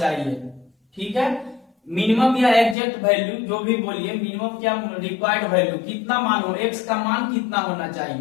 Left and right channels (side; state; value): right; drops out; at 2.8 s